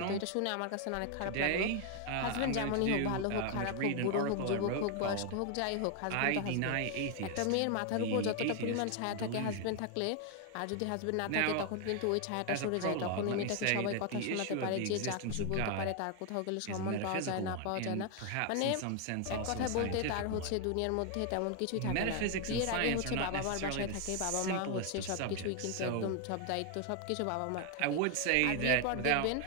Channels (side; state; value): both; different; correlation 0.00